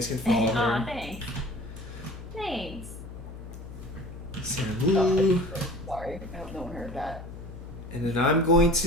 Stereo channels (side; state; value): left; noise; hum, 12 dB below the sound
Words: can follow her. Thanks. Thanks. Sam Oh, Wu. sorry. I hope no one heard that. And then I'm going